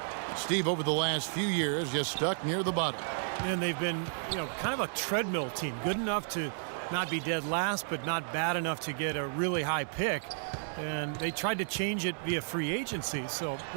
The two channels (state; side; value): silent; left; 56 dB below the other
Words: Steve, over the last few years, just stuck near the bottom. And they've been, kind of a treadmill team. Good enough to not be dead last, but not bad enough to get a really high pick. And they tried to change it via free agency, so